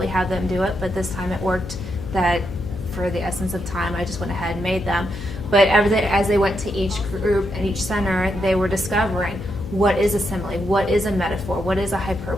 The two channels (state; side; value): noise; left; hum, 11 dB below the sound